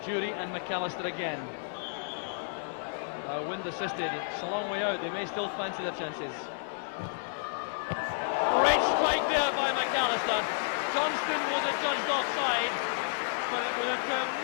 Jury and McAllister again. Wind assisted, it's a long way out, they may still fancy their chances. Great strike there by McAllister. Johnston was adjudged offside, but it was a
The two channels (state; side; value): silent; right; digital silence